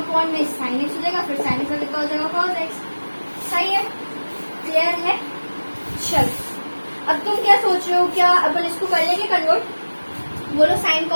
में साइन एक्स हो जाएगा, फिर साइन एक्स का कितना हो जाएगा कॉस एक्स, सही है, क्लियर है। चल अब तुम क्या सोच रहे हो, क्या अपन इसको कर लेंगे कन्वर्ट, बोलो साइन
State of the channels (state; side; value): inverted; both; correlation -1.00